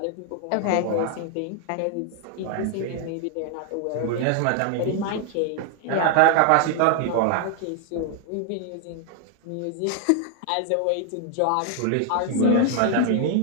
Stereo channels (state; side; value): different; both; correlation 0.00